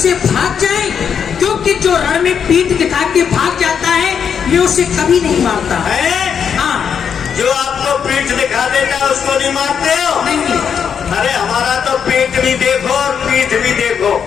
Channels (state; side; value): quieter; right; 7.4 dB